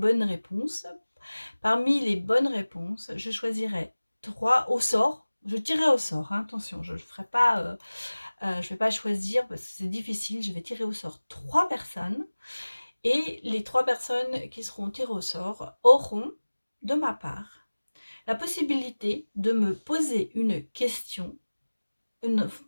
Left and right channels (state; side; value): inverted; both; correlation -1.00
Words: réponses. Parmi les bonnes réponses, je choisirai 3 au sort. Je tirerai au sort, hein, attention, je ne ferai pas... je vais pas choisir parce que c'est difficile. Je vais tirer au sort 3 personnes. Et les 3 personnes qui seront tirées au sort auront, de ma part, la possibilité de me poser une question,